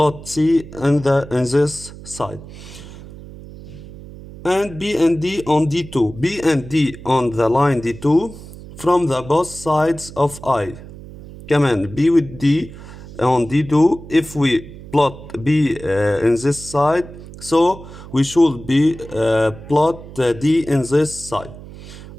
C in this side. And B and D on D2. B and D on the line D2 from the both sides of I. كمان B with D on D2. If we plot B in this side, so we should be plot D in this side,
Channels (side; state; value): right; noise; hum, 16 dB below the sound